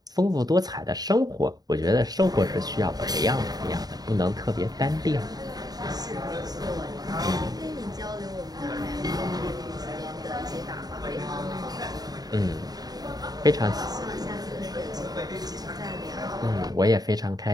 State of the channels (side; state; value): left; late; 0.19 ms